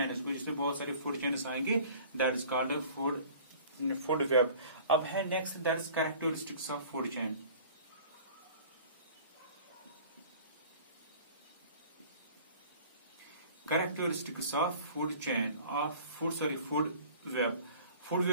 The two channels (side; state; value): both; inverted; correlation -0.47